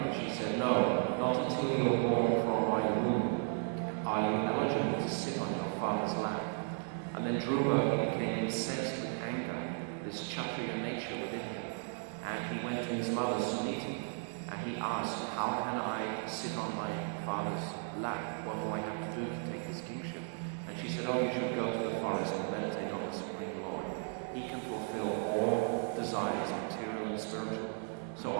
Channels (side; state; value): left; silent; 54 dB below the other